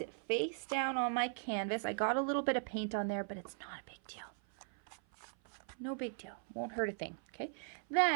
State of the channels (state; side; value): silent; left; 52 dB below the other